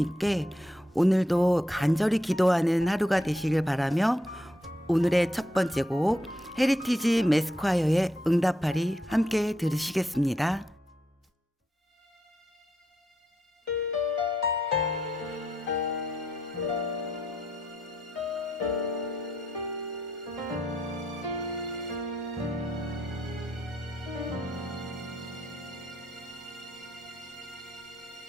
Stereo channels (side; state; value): both; normal; correlation 0.80